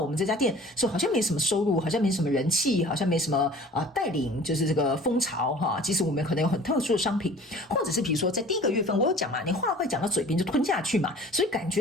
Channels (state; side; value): normal; both; correlation 0.46